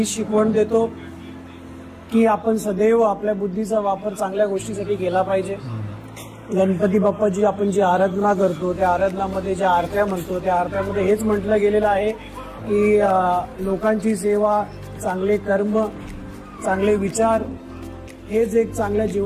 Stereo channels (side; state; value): both; identical; correlation 1.00